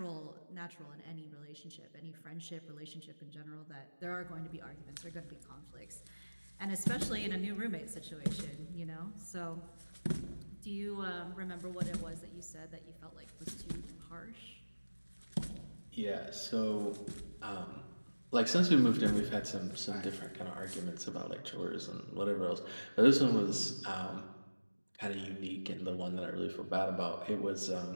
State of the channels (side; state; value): both; inverted; correlation -1.00